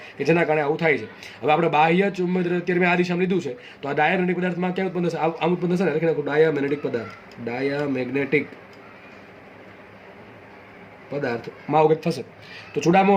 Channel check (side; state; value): both; identical; correlation 1.00